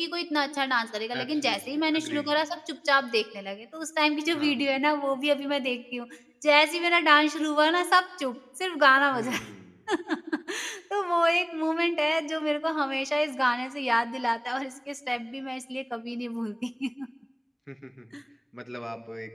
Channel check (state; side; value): identical; both; correlation 1.00